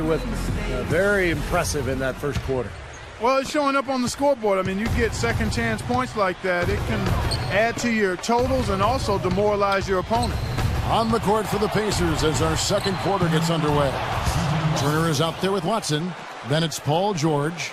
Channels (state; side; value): identical; both; correlation 1.00